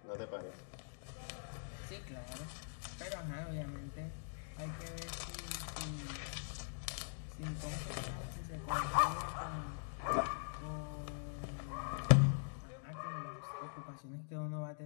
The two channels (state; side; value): silent; right; digital silence